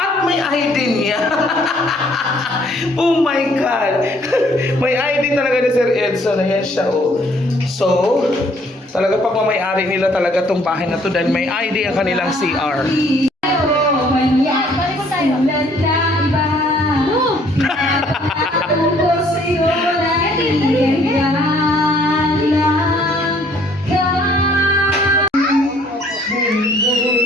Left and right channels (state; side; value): normal; both; correlation 0.62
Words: may ID niya. Oh my God. May ID talaga ni Sir Edson. Ayan siya, oh. So, talaga pagmamayari nila talaga tong bahay na to dahil may ID ang kanilang CR. Balik ko tayo.